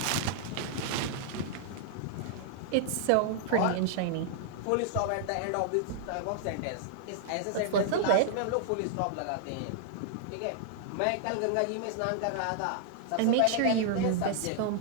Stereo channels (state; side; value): different; both; correlation -0.01